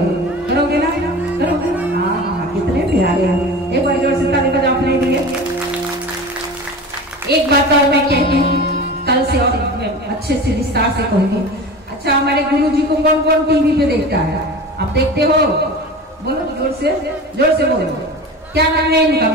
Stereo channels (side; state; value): both; normal; correlation 0.33